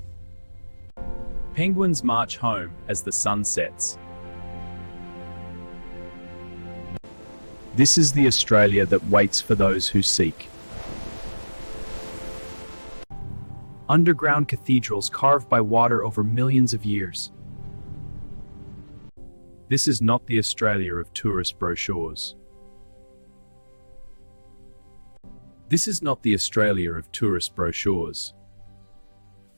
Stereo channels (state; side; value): inverted; both; correlation -1.00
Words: Penguins march home as the sun sets. This is the Australia that waits for those who seek. Underground cathedrals carved by water over millions of years. This is not the Australia of tourist brochures. This is not the Australia of tourist brochures.